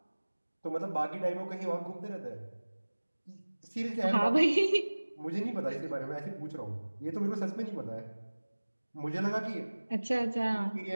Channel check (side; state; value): both; inverted; correlation -1.00